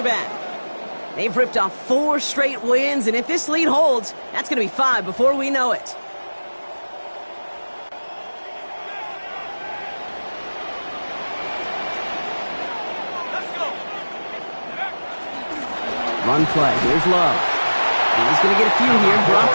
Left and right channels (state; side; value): inverted; both; correlation -1.00